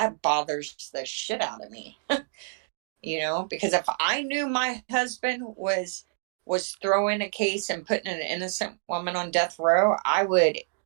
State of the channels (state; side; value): silent; left; digital silence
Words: bothers the shit out of me. Because if I knew my husband was throwing a case and putting an innocent woman on death row, I would